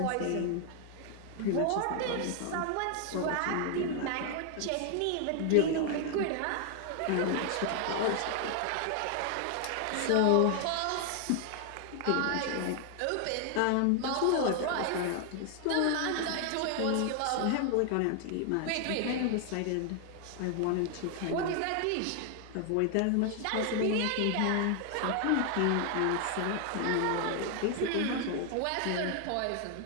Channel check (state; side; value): different; both; correlation 0.00